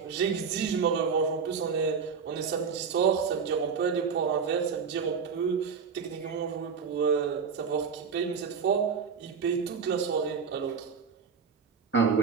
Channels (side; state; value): left; quieter; 6.0 dB